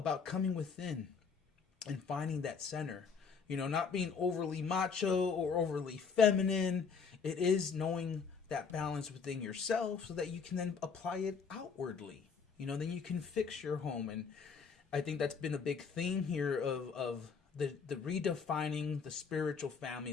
coming within and finding that center. You know, not being overly macho or overly feminine. It is knowing that balance within yourself so that you can then apply it outwardly. You know, then you can fix your home. And I think that's been a big theme here of the redefining the spiritual family,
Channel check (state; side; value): quieter; right; 5.7 dB